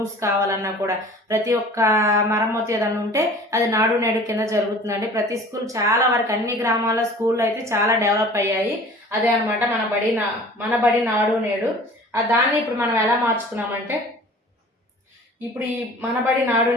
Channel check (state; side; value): normal; both; correlation 0.45